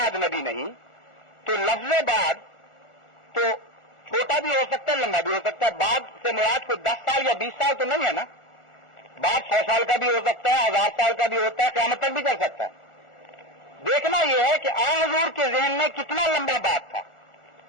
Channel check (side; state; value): right; late; 1.4 ms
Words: نبی نہیں تو لفظ بعد تو چھوٹا بھی ہو سکتا ہے لمبا بھی ہو سکتا ہے. بعد سے مراد کوئی 10 سال یا 20 سال تو نہیں ہے نا. بعد 100 سال کا بھی ہو سکتا ہے 1000 سال کا بھی ہوتا ہے قیامت تک بھی چل سکتا ہے. دیکھنا یہ ہے کہ حضور کے ذہن میں کتنا لمبا بات تھا.